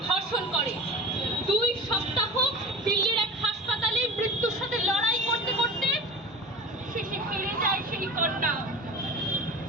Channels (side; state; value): both; normal; correlation 0.33